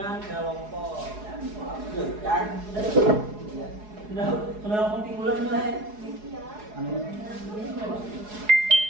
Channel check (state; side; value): late; left; 4.8 ms